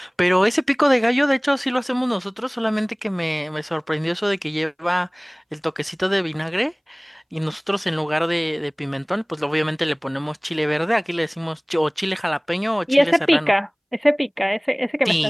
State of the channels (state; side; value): identical; both; correlation 1.00